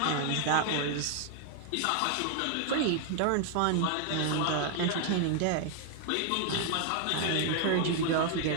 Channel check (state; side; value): different; both; correlation 0.00